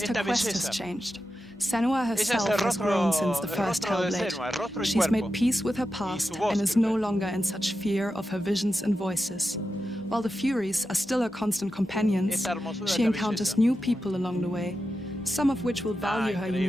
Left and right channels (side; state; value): both; normal; correlation 0.90